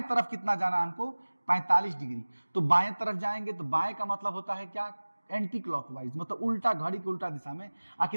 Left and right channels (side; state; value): both; inverted; correlation -1.00